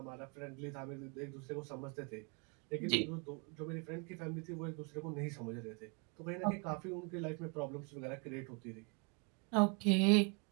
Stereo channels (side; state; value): left; quieter; 34.6 dB